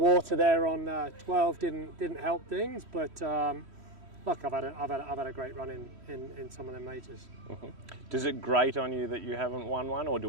there on 12 didn't help things. But look, I've had a great run in some of the majors. Does it grate on you that you haven't won one, or do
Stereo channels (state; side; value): late; left; 3.1 ms